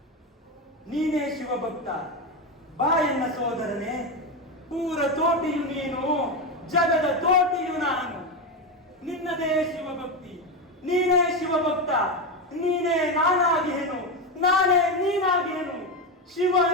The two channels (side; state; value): both; normal; correlation 0.13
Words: ನೀನೇ ಶಿವಭಕ್ತ, ಬಾ ಎನ್ನ ಸೋದರನೇ. ಪೂರ ತೋಟಿಯು ನೀನು, ಜಗದ ತೋಟಿಯು ನಾನು. ನಿನ್ನದೇ ಶಿವಭಕ್ತಿ, ನೀನೇ ಶಿವಭಕ್ತ, ನೀನೇ ನಾನಾಗಿಹೆನು, ನಾನೇ ನೀನಾಗಿಹೆನು. ಶಿವ